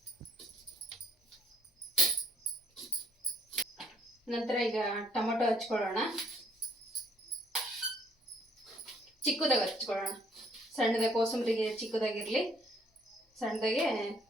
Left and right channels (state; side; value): normal; both; correlation 0.64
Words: ನಂತರ ಈಗ ಟೊಮೊಟೊ ಹಚ್ಕೊಳ್ಳೋಣ, ಚಿಕ್ಕದಾಗಿ ಹಚ್ಕೊಳ್ಳೋಣ. ಸಣ್ಣದಾಗಿ ಕೋಸಂಬರಿಗೆ ಚಿಕ್ಕದಾಗಿರಲಿ, ಸಣ್ಣದಾಗೆ